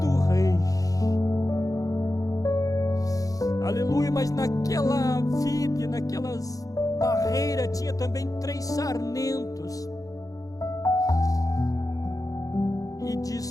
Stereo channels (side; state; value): right; late; 0.17 ms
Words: rei. Aleluia. Mas naquela vide, naquelas barreiras, tinha também 3 sarmentos. E